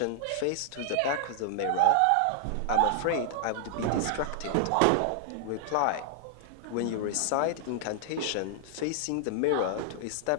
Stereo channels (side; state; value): both; different; correlation -0.01